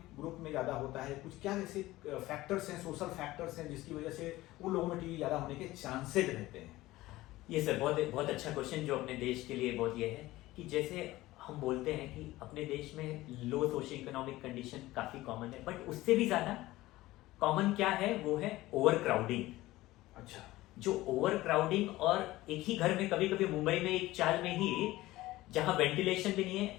ग्रुप में ज़्यादा होता है? कुछ क्या ऐसे फैक्टर्स हैं, सोशल फैक्टर्स हैं जिसकी वजह से उन लोगों में टीबी ज़्यादा होने के चांसेस रहते हैं? ये सर बहुत अच्छा क्वेश्चन जो अपने देश के लिए बहुत ये है कि जैसे हम बोलते हैं कि अपने देश में लो सोशियो इकोनॉमिक कंडीशन काफी कॉमन है, बट उससे भी ज्यादा कॉमन क्या है, वो है ओवर क्राउडिंग। अच्छा। जो ओवर क्राउडिंग, और एक ही घर में कभी कभी मुंबई में एक चाल में ही जहां वेंटिलेशन भी नहीं है,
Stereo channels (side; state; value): right; quieter; 17.6 dB